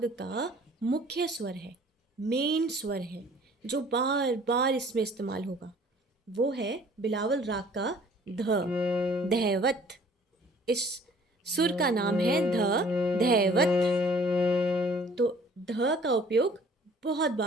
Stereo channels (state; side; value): normal; both; correlation 0.54